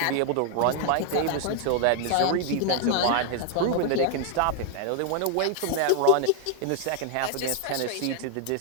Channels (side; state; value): both; different; correlation 0.00